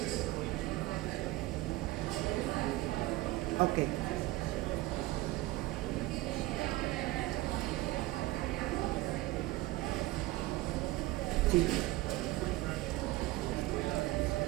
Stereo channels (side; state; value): left; quieter; 18.5 dB